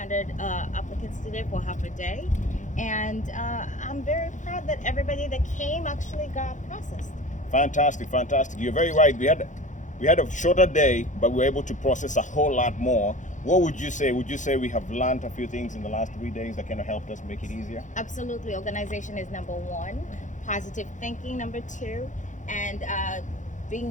applicants today for half a day. And I'm very proud that everybody that came actually got processed. Fantastic, fantastic. You're very right. We had a shorter day, but we were able to process a whole lot more. What would you say? Would you say we have learned a few things in the last 3 days that kind of helped us make it easier? Absolutely. Organization is number one, positive thinking number two, and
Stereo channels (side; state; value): right; late; 0.36 ms